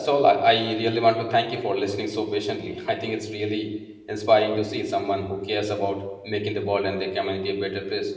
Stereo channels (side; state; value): both; identical; correlation 1.00